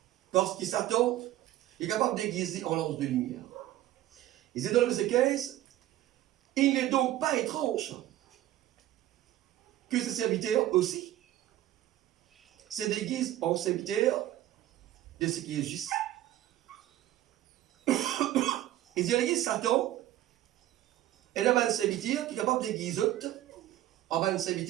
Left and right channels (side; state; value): left; quieter; 14.1 dB